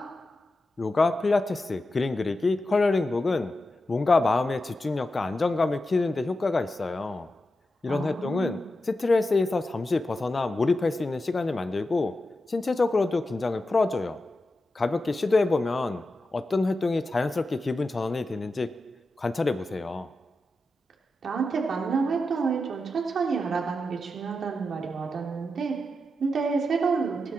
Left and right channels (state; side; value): normal; both; correlation 0.90